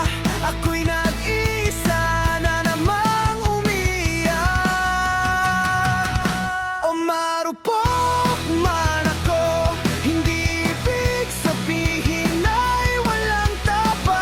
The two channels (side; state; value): both; identical; correlation 1.00